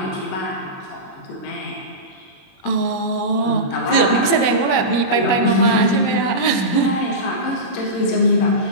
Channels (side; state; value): right; late; 21 ms